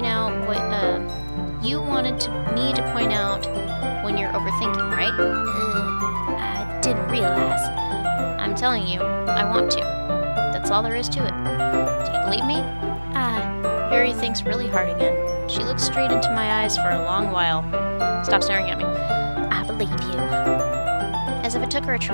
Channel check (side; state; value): both; inverted; correlation -1.00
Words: out when you're overthinking, right? I didn't realize. I'm telling you, I want to. That's all there is to it. Do you believe me? Yuri thinks really hard again. She looks straight into my eyes for a long while. Stop staring at me. I believe you. As if it took her a